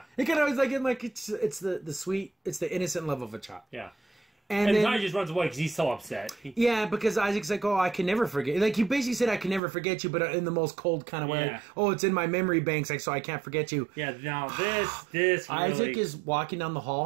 It kind of was like, it's the sweet, it's the innocent love of a child. Yeah. And then Ty just runs away because he's so upset. Yeah, because Isaac's like, oh, I can never forget. Like, he basically said, I can never forget you, but in the most cold kind of way. Yeah. Like, oh, it's in my memory banks, like, so I can't forget you. Yeah, now this really... Isaac is walking down the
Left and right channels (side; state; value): left; drops out; at 9.6 s